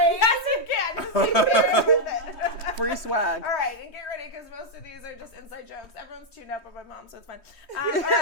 Yes, you can. Just keep sharing with it. Free swag. All right, and get ready because most of these are just inside jokes. Everyone's tuned up by my mom, so it's fine. All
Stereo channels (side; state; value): right; late; 3.2 ms